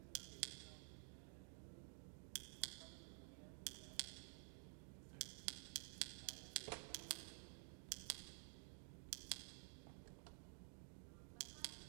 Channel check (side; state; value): left; silent; digital silence